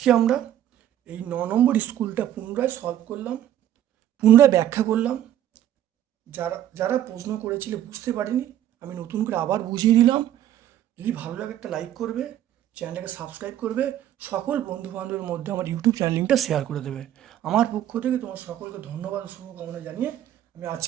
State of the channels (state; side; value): quieter; left; 11.6 dB